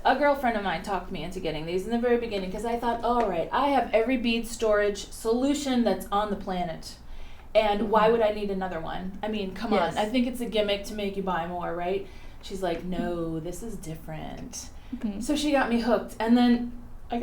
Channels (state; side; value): identical; both; correlation 1.00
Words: a girlfriend of mine talked me into getting these in the very beginning because I thought, all right, I have every bead storage solution that's on the planet. And why would I need another one? I mean, come on. I think it's a gimmick to make you buy more, right? She's like, no, this is different. So she got me hooked. And then I